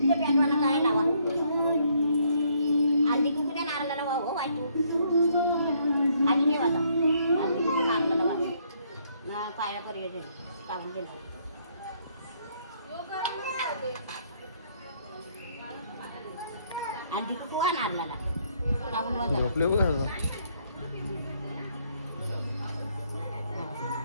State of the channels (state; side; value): inverted; both; correlation -0.68